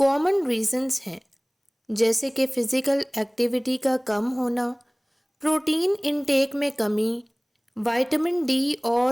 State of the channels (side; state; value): both; identical; correlation 1.00